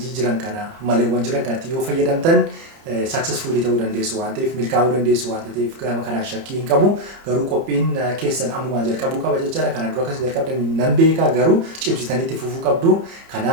jiran kana maleewwan jiran kanatti yoo fayyadamtan successfully ta'uu dandeessu waan ta'eef milkaa'uu dandeessu waan ta'eef gama kanaan shakkii hin qabu. Garuu qophiin keessan ammumaa jalqabuu qaba jechaadha. Kana dura akkas jalqabdan nan beeka garuu cimsitaniitti fufuu qabdu.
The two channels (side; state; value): left; late; 30 ms